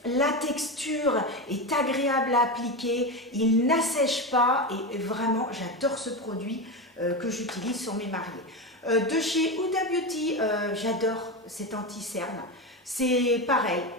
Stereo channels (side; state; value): both; normal; correlation 0.18